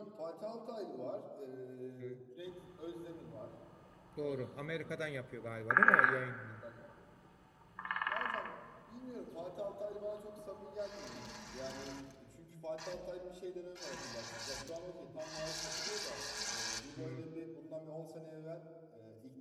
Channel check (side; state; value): both; identical; correlation 1.00